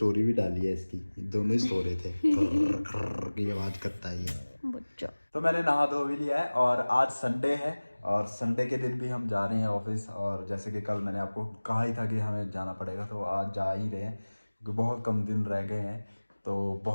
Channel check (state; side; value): inverted; both; correlation -1.00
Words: भी डाली है इसकी, दोनों ही सो रहे थे। खर्र खर्र की आवाज करता है ये बच्चा। तो मैंने नहा धो भी लिया है और आज संडे है और संडे के दिन भी हम जा रहे हैं ऑफिस। और जैसे कि कल मैंने आपको कहा ही था कि हमें जाना पड़ेगा, तो आज जा ही रहे हैं क्योंकि बहुत कम दिन रह गए हैं। तो